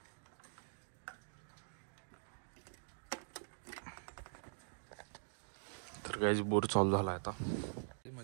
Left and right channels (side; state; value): left; silent; digital silence